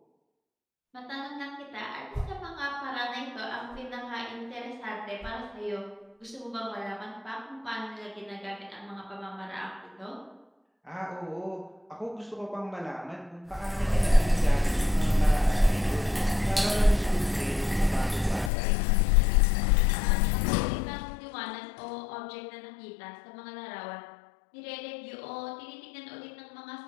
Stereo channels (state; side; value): drops out; right; at 18.5 s